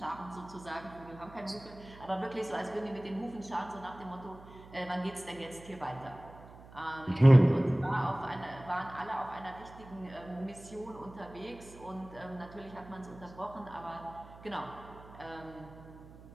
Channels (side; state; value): right; noise; hum, 18 dB below the sound